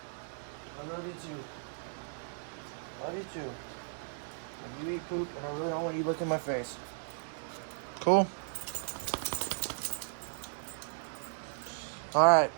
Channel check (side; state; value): left; silent; digital silence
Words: I love you too. Love you too. When you eat poop, and I really don't want you licking my face. Cool? Alright.